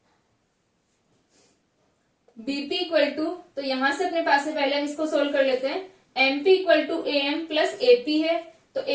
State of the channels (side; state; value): both; identical; correlation 1.00